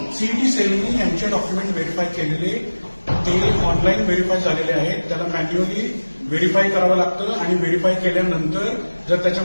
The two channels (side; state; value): both; inverted; correlation -1.00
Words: सीईटी सेलनी यांचे डॉक्युमेंट व्हेरीफाय केलेले ते ऑनलाईन व्हेरीफाय झालेले आहेत. त्याला मॅन्युअली व्हेरीफाय करावं लागतं आणि व्हेरीफाय केल्यानंतर जर